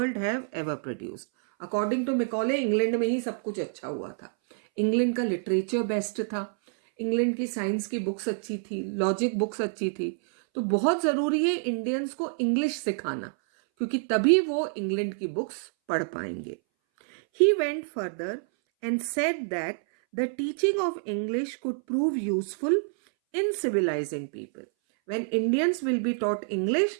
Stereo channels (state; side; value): silent; left; 59 dB below the other